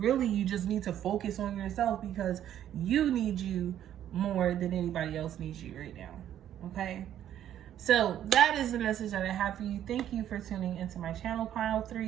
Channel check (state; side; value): quieter; left; 11.0 dB